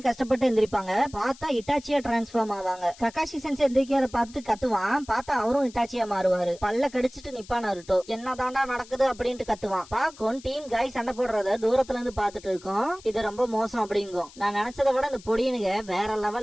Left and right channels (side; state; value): left; noise; hiss, 21 dB below the sound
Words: கஷ்டப்பட்டு எந்திரிப்பாங்க. பார்த்தா இட்டாச்சியா டிரான்ஸ்ஃபார்ம் ஆவாங்க. ககாஷி சென்சை எந்திரிக்கிறத பார்த்துட்டு கத்துவான். பார்த்தா அவரும் இட்டாச்சியா மாறுவாரு. பல்ல கடிச்சிட்டு நிப்பான் நருட்டோ. என்னதாண்டா நடக்குது அப்படின்ட்டு கத்துவான். பாக்கும் டீம் காய் சண்டை போடுறத தூரத்துல இருந்து பாத்துட்டு இருக்கோம். இது ரொம்ப மோசம் அப்படிங்கும். நான் நினைச்சதை விட இந்த பொடியனுங்க வேற